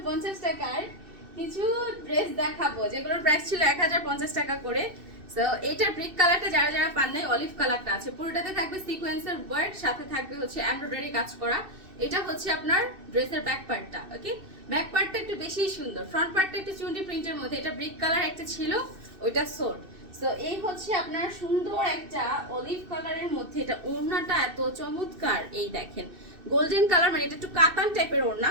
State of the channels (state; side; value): late; left; 2.6 ms